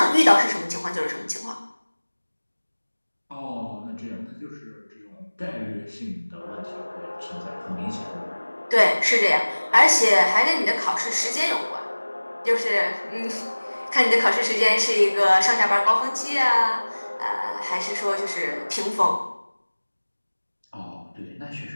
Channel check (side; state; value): both; inverted; correlation -1.00